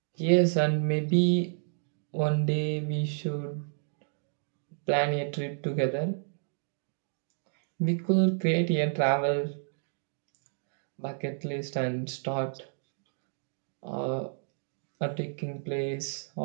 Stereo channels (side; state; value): left; silent; digital silence